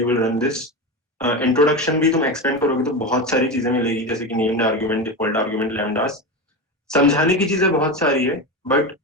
will run this. Introduction भी तुम expand करोगे तो बहुत सारी चीजें मिलेगी, जैसे कि नेम्ड आर्गुमेंट, डिफॉल्ट आर्गुमेंट, लैम्डास। समझाने की चीजें बहुत सारी है but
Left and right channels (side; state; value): both; normal; correlation 0.20